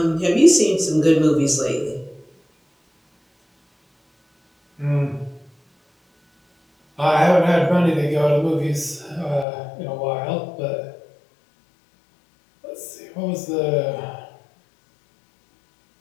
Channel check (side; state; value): right; drops out; at 9.5 s